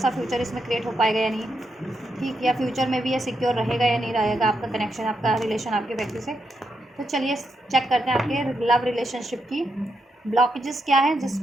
फ्यूचर इसमें क्रिएट हो पाएगा या नहीं, ठीक, या फ्यूचर में भी ये सिक्योर रहेगा या नहीं रहेगा आपका कनेक्शन, आपका रिलेशन आपके व्यक्ति से। तो चलिए चेक करते हैं आपके लव रिलेशनशिप की ब्लॉकेजेस क्या है,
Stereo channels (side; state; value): both; normal; correlation 0.83